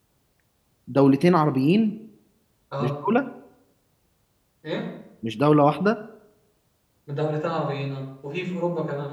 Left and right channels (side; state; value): both; identical; correlation 1.00